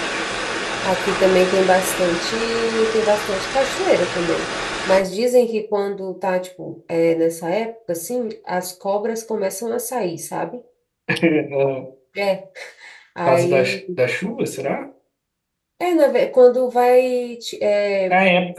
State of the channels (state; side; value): identical; both; correlation 1.00